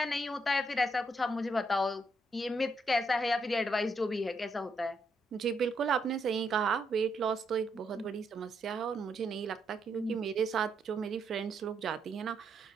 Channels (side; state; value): both; normal; correlation 0.77